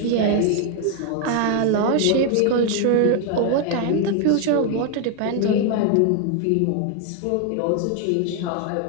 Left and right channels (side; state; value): both; different; correlation 0.01